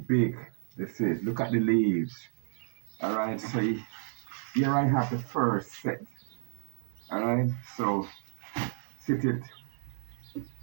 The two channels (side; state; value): left; silent; digital silence